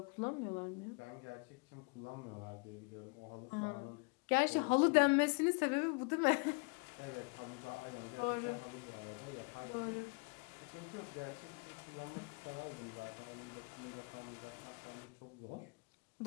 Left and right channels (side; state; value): right; quieter; 32.4 dB